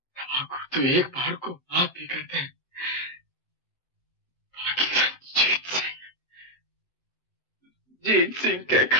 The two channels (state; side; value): late; right; 7.8 ms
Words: तो एक बार को आप ही कहते हैं, जीत सिंह के